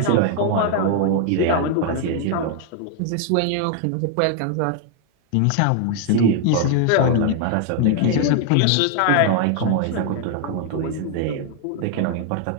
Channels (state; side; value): different; both; correlation 0.00